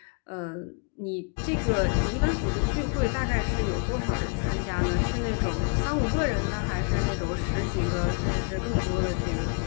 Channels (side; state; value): right; quieter; 37.0 dB